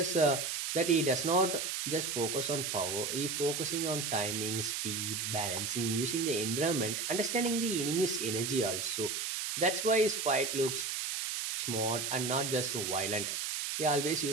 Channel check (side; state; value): right; noise; hiss, 2 dB below the sound